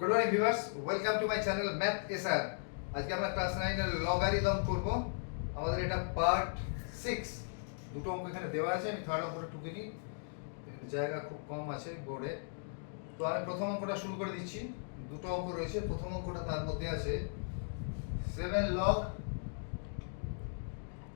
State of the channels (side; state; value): right; silent; digital silence